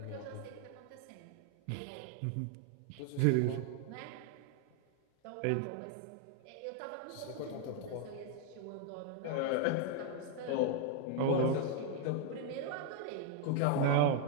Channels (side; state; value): both; different; correlation 0.00